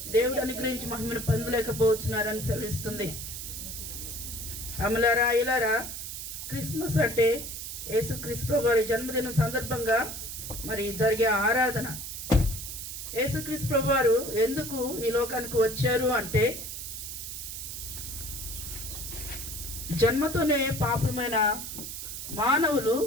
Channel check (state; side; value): noise; right; hiss, 7 dB below the sound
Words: దేవుడు అనుగ్రహించి మహిమను పొందలేకపోతున్నారని సెలవిస్తుంది. అమలారా ఇలారా, క్రిస్మస్ అంటే యేసుక్రీస్తు ప్రభు వారి జన్మదినం సందర్భంగా మరి జరిగే ఆరాధన. యేసుక్రీస్తు ప్రభు వారు ఎందుకు ఈ లోకానికి వచ్చారు అంటే, జన్మతోనే పాపమైన మానవులు